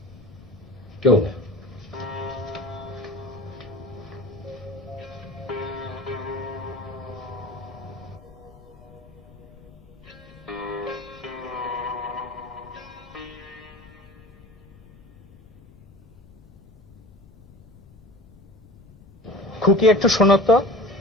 কেউ না। খুকি একটু শোনো তো।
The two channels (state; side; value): noise; left; rumble, 23 dB below the sound